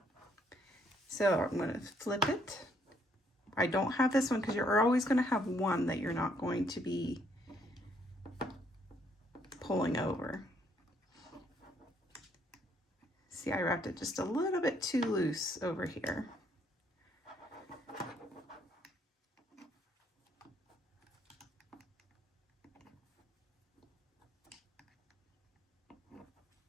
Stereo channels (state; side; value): normal; both; correlation 0.69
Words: So I'm going to flip it. I don't have this one because you're always going to have one that you're not going to be pulling over. See, I wrapped it just a little bit too loose over here.